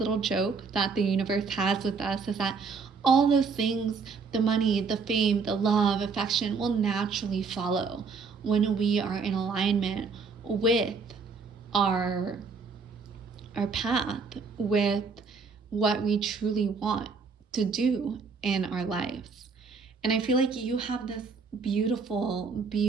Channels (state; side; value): quieter; left; 5.0 dB